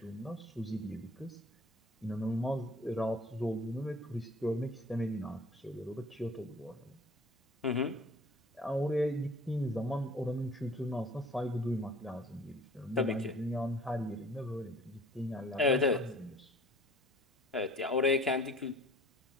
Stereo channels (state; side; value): normal; both; correlation 0.50